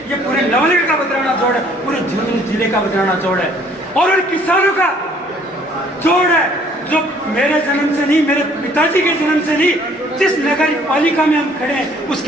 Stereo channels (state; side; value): normal; both; correlation 0.59